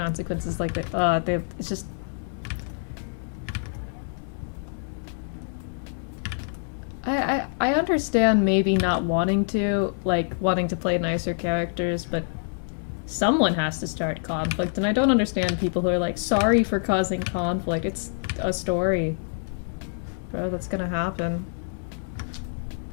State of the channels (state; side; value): silent; right; digital silence